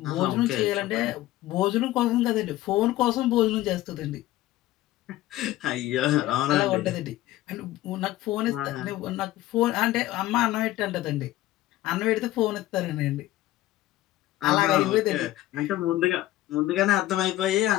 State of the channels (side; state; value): right; quieter; 15.6 dB